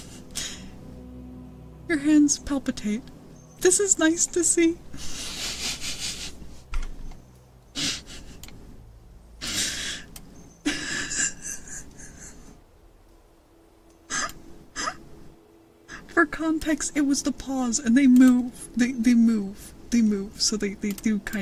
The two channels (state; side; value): identical; both; correlation 1.00